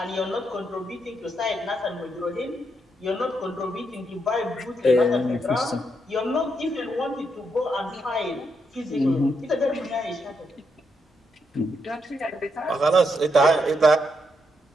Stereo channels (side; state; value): both; normal; correlation 0.80